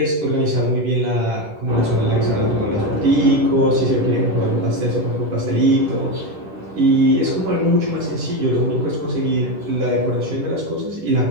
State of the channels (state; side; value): late; left; 10 ms